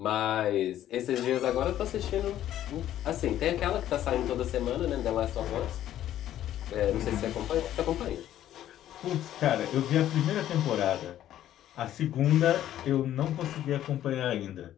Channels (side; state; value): right; quieter; 12.1 dB